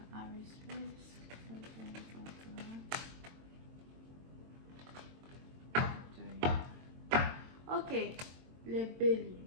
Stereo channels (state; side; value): late; left; 22 ms